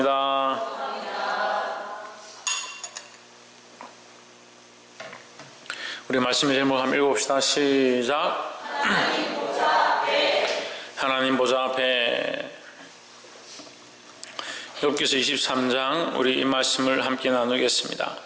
우리 말씀의 제목 한번 읽어봅시다. 시작. 하나님 보좌 앞에. 욥기서 23장 우리 이 말씀을 함께 나누겠습니다.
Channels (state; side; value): identical; both; correlation 1.00